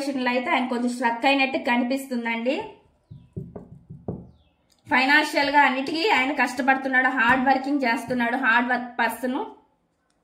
అయితే ఆయన కొంచెం స్ట్రక్ అయినట్టు కనిపిస్తుందండి. ఫైనాన్షియల్ గా అన్నిటికీ ఆయన కష్టపడుతున్నాడు, హార్డ్ వర్కింగ్ చేస్తున్నాడు, hard work person.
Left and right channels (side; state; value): both; identical; correlation 1.00